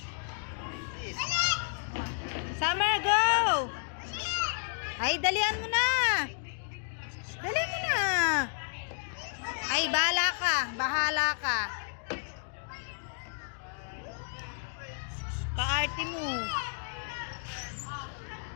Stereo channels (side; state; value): right; silent; digital silence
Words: Summer, go! Ay, dalian mo na. Dalian mo na. Ay, bahala ka. Bahala ka. Kaarte mo.